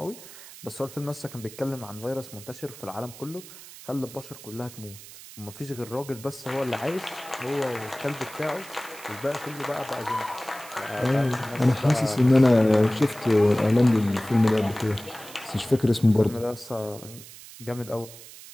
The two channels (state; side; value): noise; right; hiss, 17 dB below the sound